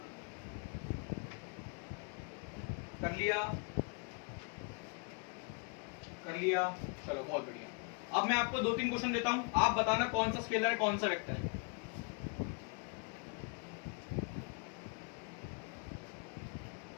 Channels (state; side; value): quieter; right; 34.3 dB